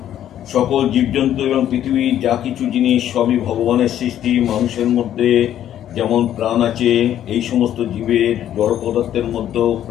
সকল জীবজন্তু এবং পৃথিবীর যা কিছু জিনিস সবই ভগবানের সৃষ্টি। মানুষের মধ্যে যেমন প্রাণ আছে, এই সমস্ত জীবের জড় পদার্থের মধ্যেও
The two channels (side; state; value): right; quieter; 11.1 dB